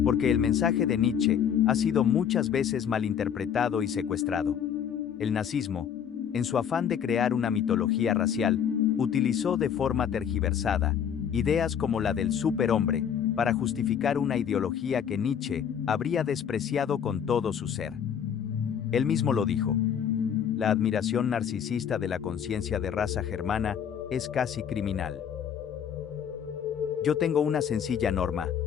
porque el mensaje de Nietzsche ha sido muchas veces malinterpretado y secuestrado. El nazismo, en su afán de crear una mitología racial, utilizó de forma tergiversada ideas como la del superhombre para justificar una ideología que Nietzsche habría despreciado con todo su ser. Él mismo lo dijo. La admiración narcisista de la conciencia de raza germana es casi criminal. Yo tengo una sencilla norma:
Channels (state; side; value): quieter; right; 8.3 dB